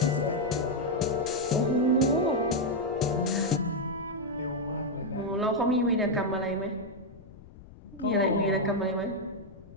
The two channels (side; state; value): left; noise; rumble, 19 dB below the sound